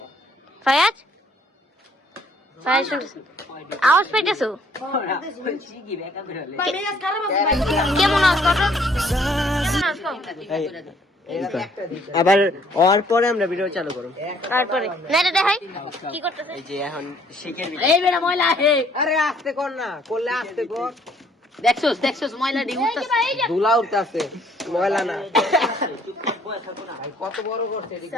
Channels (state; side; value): normal; both; correlation 0.62